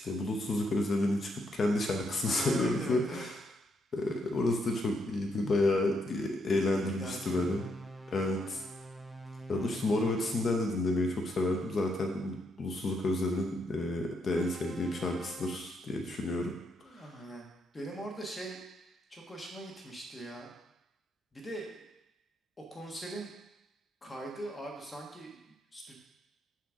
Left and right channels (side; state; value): both; normal; correlation 0.77